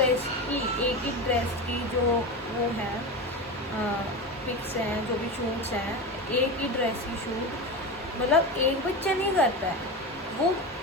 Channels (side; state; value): both; normal; correlation 0.23